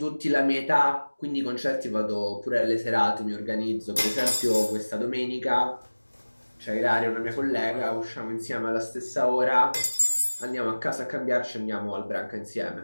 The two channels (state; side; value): inverted; both; correlation -1.00